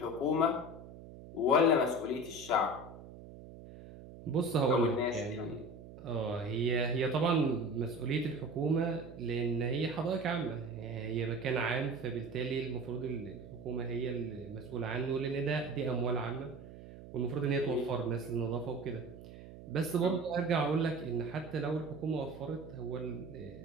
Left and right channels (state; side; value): noise; right; hum, 15 dB below the sound